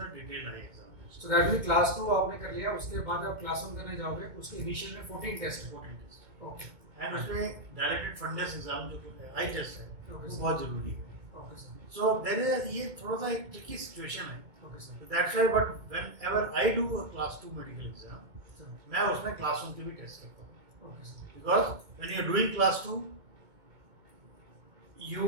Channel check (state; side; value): late; left; 2.2 ms